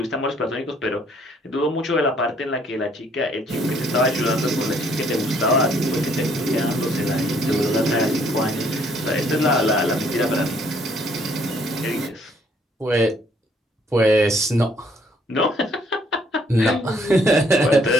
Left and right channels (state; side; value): normal; both; correlation 0.65